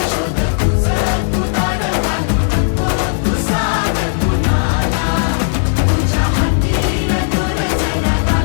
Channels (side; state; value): right; silent; digital silence